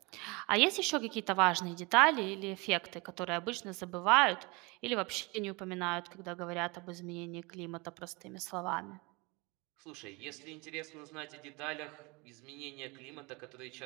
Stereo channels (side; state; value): left; quieter; 26.9 dB